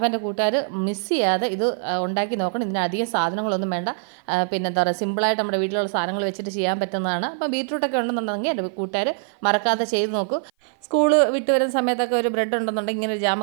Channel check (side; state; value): left; silent; 56 dB below the other